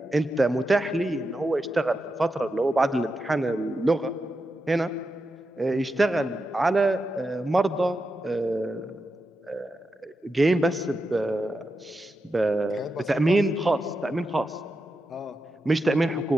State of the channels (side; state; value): both; normal; correlation 0.88